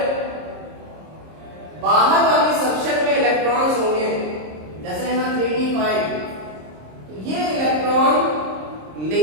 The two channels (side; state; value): left; late; 26 ms